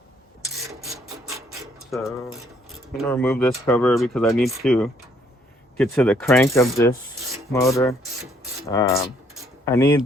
So I'm gonna remove this cover because I need to get to the crank of this motor. I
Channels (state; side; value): normal; both; correlation 0.66